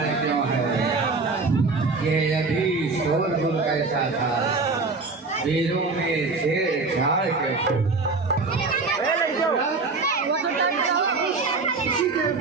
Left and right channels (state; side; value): quieter; left; 4.0 dB